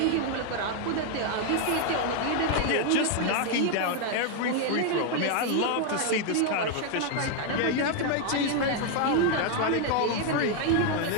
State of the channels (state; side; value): different; both; correlation 0.01